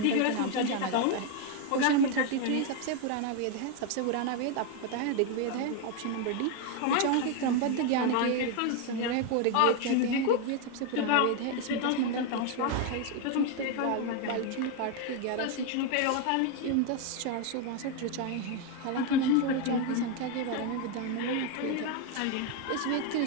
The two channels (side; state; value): both; different; correlation 0.01